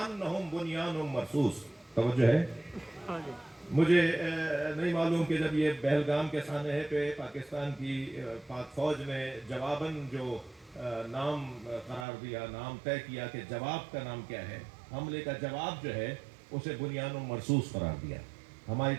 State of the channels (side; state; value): left; drops out; at 12.1 s